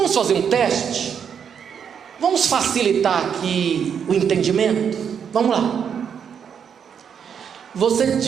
fazer um teste? Vamos facilitar aqui o entendimento? Vamos lá. Você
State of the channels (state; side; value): quieter; left; 7.5 dB